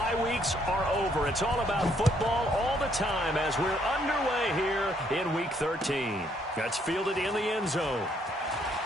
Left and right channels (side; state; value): both; normal; correlation 0.69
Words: weeks are over. It's all about football all the time as we're underway here in Week 13. That's fielded in the end zone.